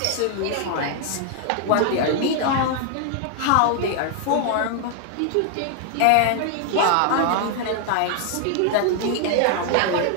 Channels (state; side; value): different; both; correlation 0.00